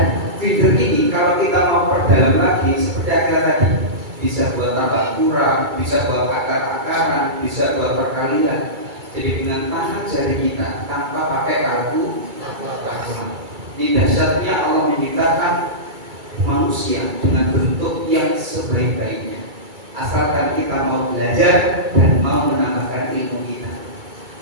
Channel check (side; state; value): left; late; 2.3 ms